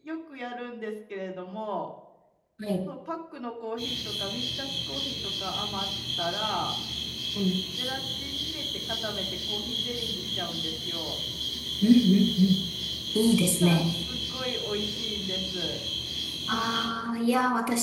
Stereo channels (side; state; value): both; identical; correlation 1.00